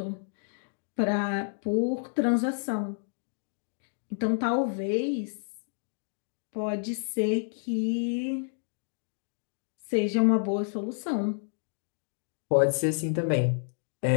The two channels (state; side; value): silent; right; digital silence